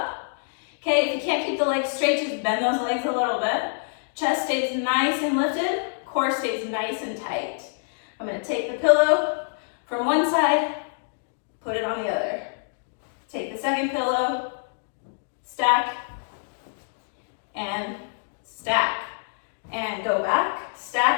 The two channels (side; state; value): right; silent; digital silence